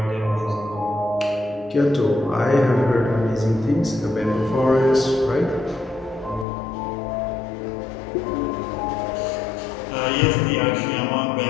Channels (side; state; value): right; drops out; at 6.5 s